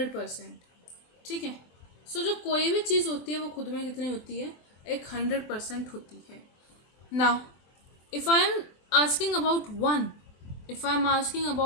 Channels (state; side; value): late; right; 24 ms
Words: ठीक है, सो जो कोई भी चीज़ होती है वो खुद में कितनी होती है, एक 100% होती है। Now if I am asking about one, if I am asking